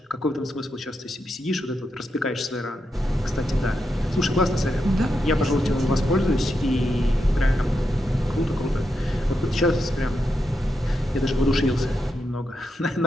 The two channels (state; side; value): normal; both; correlation 0.84